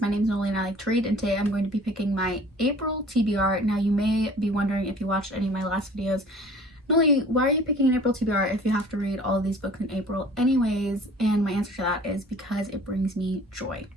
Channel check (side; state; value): both; normal; correlation 0.48